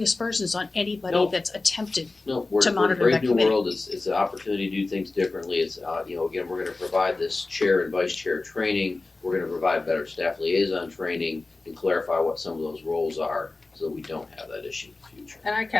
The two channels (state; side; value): quieter; right; 3.4 dB